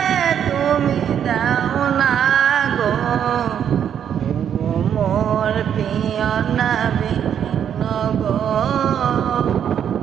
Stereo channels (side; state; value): left; quieter; 8.9 dB